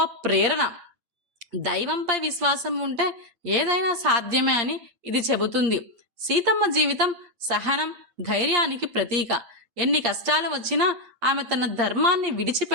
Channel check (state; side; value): late; left; 8.5 ms